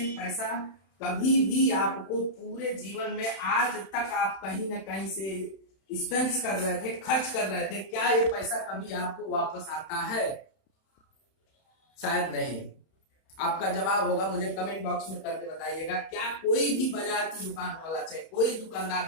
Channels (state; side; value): late; right; 31 ms